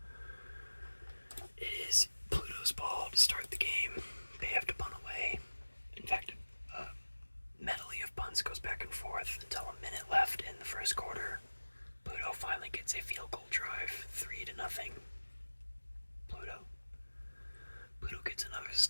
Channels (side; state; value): both; inverted; correlation -1.00